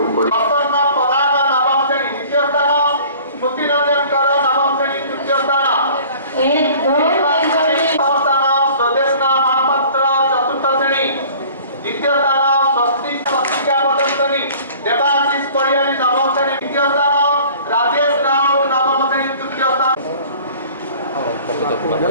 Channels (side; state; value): both; inverted; correlation -0.48